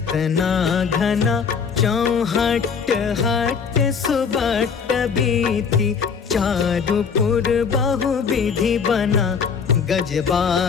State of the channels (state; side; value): quieter; right; 6.2 dB